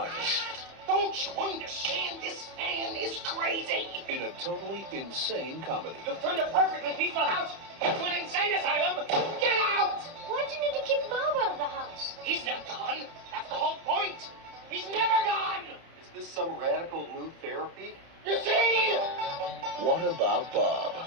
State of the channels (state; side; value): late; left; 30 ms